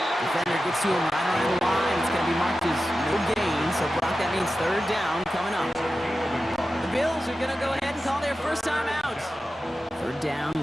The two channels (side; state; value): both; normal; correlation 0.93